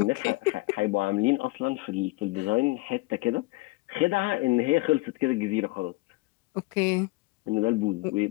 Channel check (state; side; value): quieter; right; 22.1 dB